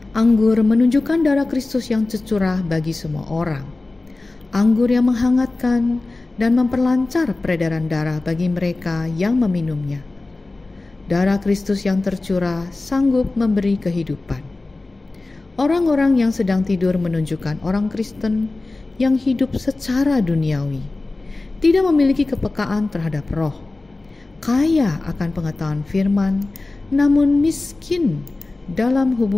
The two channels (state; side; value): quieter; right; 3.2 dB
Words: Anggur menunjukkan darah Kristus yang tercurah bagi semua orang. Anggur yang menghangatkan dan memperlancar peredaran darah bagi mereka yang meminumnya. Darah Kristus yang tercurah sanggup memberi kehidupan. Orang-orang yang sedang tidur menunjukkan orang Kristen yang hidup secara duniawi, tidak memiliki kepekaan terhadap roh, kaya akan pengetahuan firman, namun miskin dalam